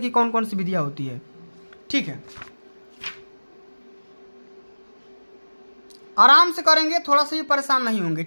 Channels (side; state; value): both; inverted; correlation -1.00